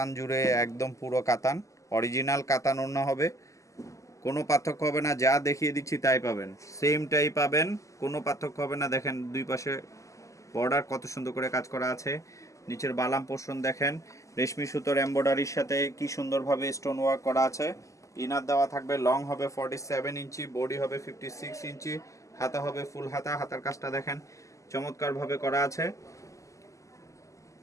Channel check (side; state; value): right; late; 0.16 ms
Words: জুড়ে, একদম পুরো কাতান, অরিজিনাল কাতান ওড়না হবে। কোনো পার্থক্য হবে না, যা দেখিয়ে দিচ্ছি তাই পাবেন, সেমটাই পাবেন, কোনো পার্থক্য হবে না। দেখেন দুই পাশে বর্ডার কত সুন্দর করে কাজ করা আছে। নিচের বালাম পোর্শন দেখেন, রেশমি সুতোর এমব্রয়ডারির সাথে কি সুন্দরভাবে স্টোন ওয়ার্ক করা আছে। ইনার দেওয়া থাকবে, লং হবে 47 ইঞ্চি, বডি হবে 56 ইঞ্চি, হাতা হবে ফুল হাতা। হাতার কাজটা দেখেন চমৎকারভাবে করা আছে।